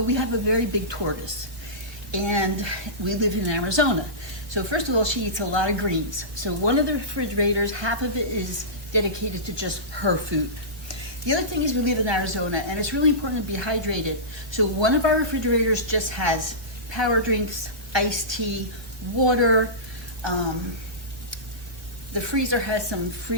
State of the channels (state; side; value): late; left; 1.5 ms